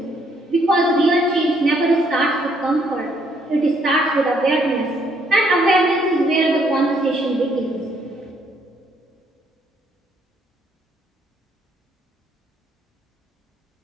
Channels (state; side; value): normal; both; correlation 0.69